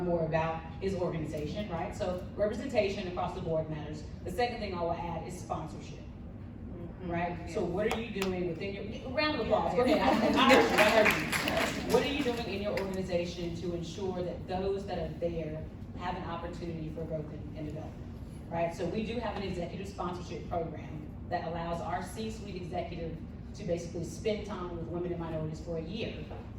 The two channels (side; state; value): both; identical; correlation 1.00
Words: more about his organization, right? So representation across the board matters. The second thing I will add is sponsorship, right? So what are you doing within your, round of applause, go ahead, I heard you. What are you doing in your organization to ensure that those that are there have an opportunity for growth and development, right? So we do have an executive sponsorship program that allows our C-suite executive to basically spend time with women and minorities for a year.